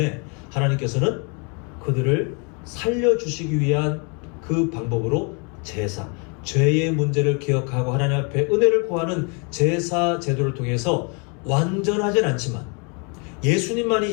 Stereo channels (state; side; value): quieter; right; 34.9 dB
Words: 하나님께서는 그들을 살려주시기 위한 그 방법으로 제사, 죄의 문제를 기억하고 하나님 앞에 은혜를 구하는 제사 제도를 통해서 완전하진 않지만,